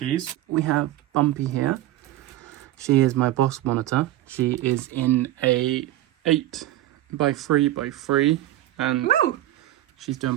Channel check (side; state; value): left; quieter; 14.7 dB